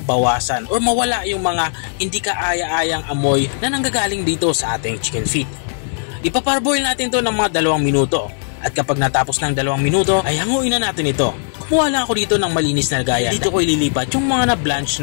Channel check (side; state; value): right; silent; 64 dB below the other